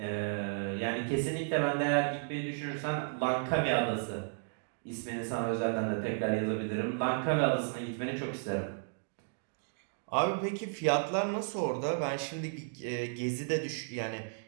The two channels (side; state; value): left; silent; digital silence